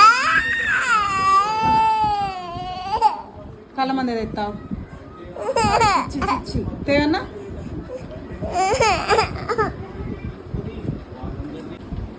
కలమంద తెస్తావు తేవన్నా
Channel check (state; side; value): identical; both; correlation 1.00